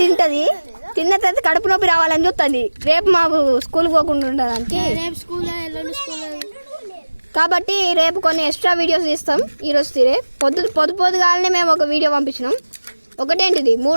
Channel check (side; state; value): both; inverted; correlation -1.00